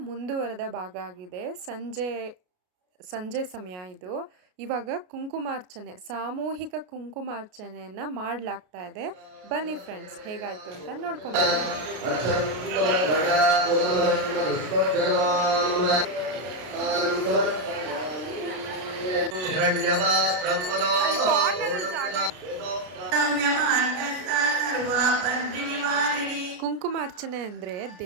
ಮುಂದುವರೆದ ಭಾಗ ಆಗಿದೆ. ಸಂಜೆ ಸಮಯ ಇದು. ಇವಾಗ ಕುಂಕುಮಾರ್ಚನೆ, ಸಾಮೂಹಿಕ ಕುಂಕುಮಾರ್ಚನೆಯನ್ನು ಮಾಡಲಾಗ್ತಾ ಇದೆ. ಬನ್ನಿ ಫ್ರೆಂಡ್ಸ್, ಹೇಗಾಯಿತು ಅಂತ ನೋಡ್ಕೊಂಬರೋಣ. ಕುಂಕುಮಾರ್ಚನೆ ಅಂದರೆ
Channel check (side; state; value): left; late; 33 ms